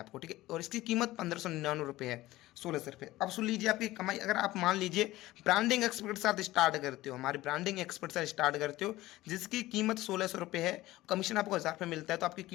ठीक है, और इसकी कीमत 1,599 है, 1,600 रुपये। अब सुन लीजिए आपकी कमाई, अगर आप मान लीजिए ब्रांडिंग एक्सपर्ट के साथ स्टार्ट करते हो, हमारे ब्रांडिंग एक्सपर्ट से स्टार्ट करते हो, जिसकी कीमत 1,600 रुपये है, कमीशन आपको 1,000 रुपये मिलता है, तो आपकी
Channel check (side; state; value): right; quieter; 17.1 dB